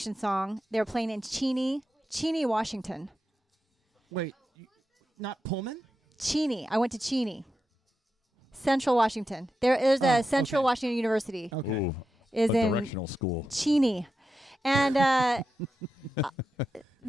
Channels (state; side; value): normal; both; correlation 0.88